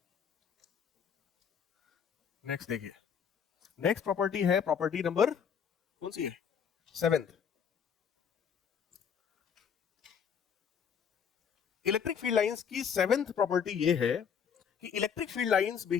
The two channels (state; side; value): quieter; right; 7.3 dB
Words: नेक्स्ट देखिए, नेक्स्ट प्रॉपर्टी है प्रॉपर्टी नंबर कौन सी है? 7th। इलेक्ट्रिक फील्ड लाइंस की 7th प्रॉपर्टी ये है कि electric field lines